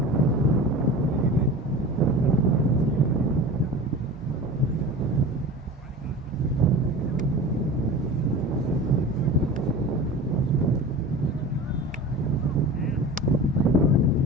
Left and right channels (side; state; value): both; normal; correlation 0.35